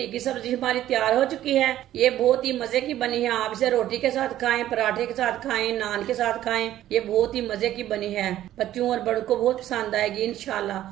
की सब्जी हमारी तैयार हो चुकी है। ये बहुत ही मजे की बनी है। आप इसे रोटी के साथ खाएं, पराठे के साथ खाएं, नान के साथ खाएं। ये बहुत ही मजे की बनी है। बच्चों और बड़ों को बहुत पसंद आएगी इंशाल्लाह।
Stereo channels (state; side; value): quieter; left; 13.0 dB